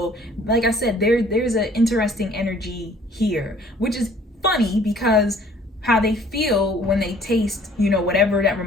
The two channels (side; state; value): both; normal; correlation 0.56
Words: like I said, there's an interesting energy here, which is funny because how they feel when they taste, you know, whatever that